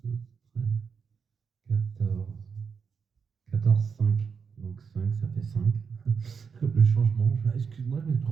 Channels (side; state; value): left; quieter; 6.0 dB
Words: 12, 13, 14. 14, 5. Donc 5, ça fait 5. Le changement. Excuse-moi, je me suis